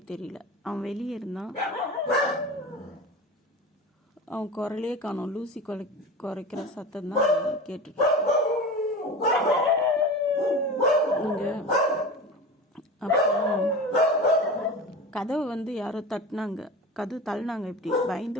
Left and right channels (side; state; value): both; normal; correlation 0.31